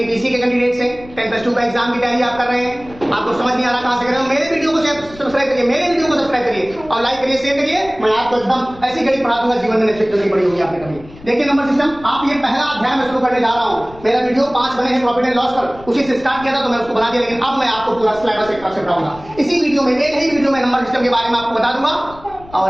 के कैंडिडेट्स हैं, 10+2 का एग्जाम की तैयारी आप कर रहे हैं, आपको समझ नहीं आ रहा कहां से कर रहे हो, मेरे वीडियो को सब्सक्राइब करिए, मेरे वीडियो को सब्सक्राइब करिए और लाइक करिए, शेयर करिए। मैं आपको एकदम ऐसी गणित पढ़ा दूंगा, जीवन में नहीं पड़ी होगी आपने कभी। देखिए नंबर सिस्टम, आप ये पहला अध्याय में शुरू करने जा रहा हूं। मेरा वीडियो 5 बने हैं प्रॉफिट एंड लॉस पर, उसी से स्टार्ट किया था तो मैं उसको बना दिया, लेकिन अब मैं आपको पूरा सिलेबस एक तरफ से पढ़ाऊंगा। इसी वीडियो में, एक ही वीडियो में नंबर सिस्टम के बारे में आपको बता दूंगा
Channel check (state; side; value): noise; left; rumble, 20 dB below the sound